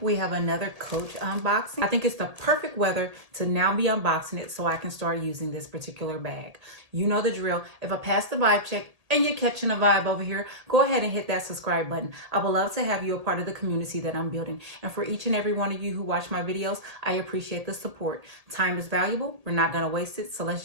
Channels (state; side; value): late; left; 1.8 ms